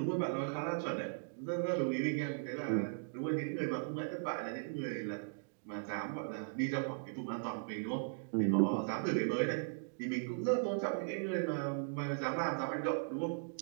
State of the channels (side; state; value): left; silent; digital silence